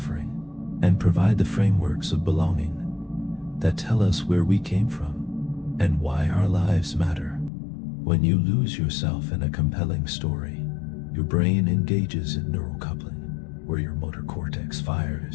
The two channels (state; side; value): drops out; right; at 7.5 s